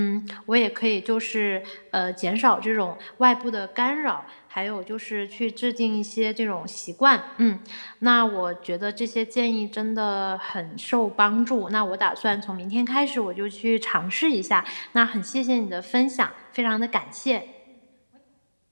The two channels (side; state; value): both; inverted; correlation -1.00